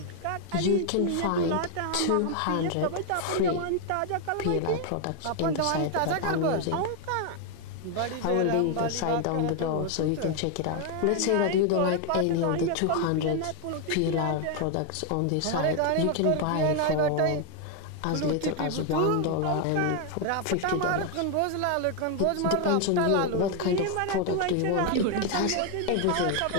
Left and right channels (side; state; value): both; different; correlation 0.01